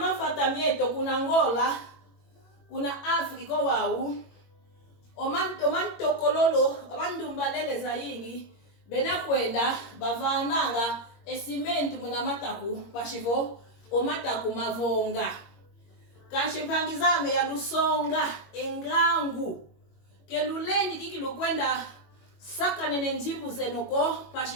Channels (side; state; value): right; late; 22 ms